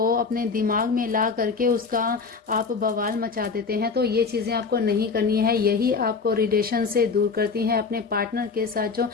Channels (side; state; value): right; quieter; 4.9 dB